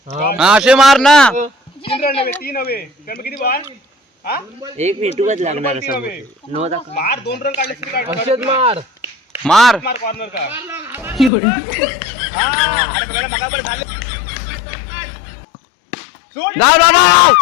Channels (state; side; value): drops out; right; at 11.3 s